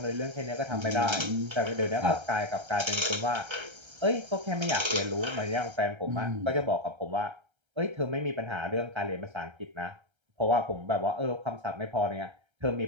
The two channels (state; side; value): late; left; 1.3 ms